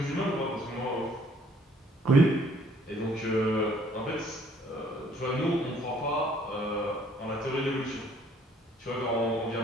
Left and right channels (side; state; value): both; normal; correlation 0.61